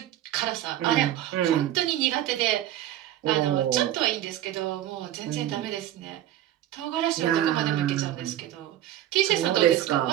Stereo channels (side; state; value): left; quieter; 12.7 dB